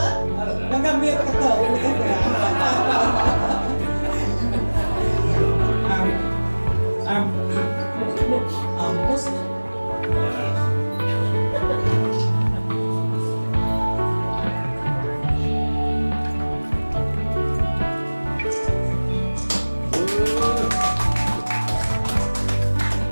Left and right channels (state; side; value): inverted; both; correlation -1.00